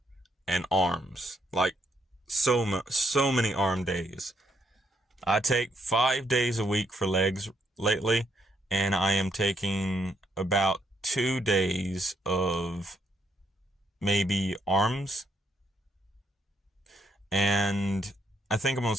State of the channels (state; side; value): normal; both; correlation 0.75